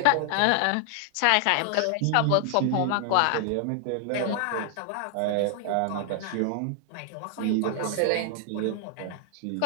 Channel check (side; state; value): both; different; correlation 0.00